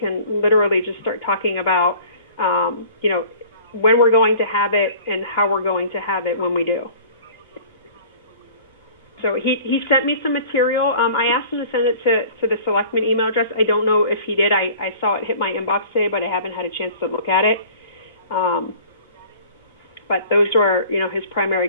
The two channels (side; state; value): both; inverted; correlation -0.47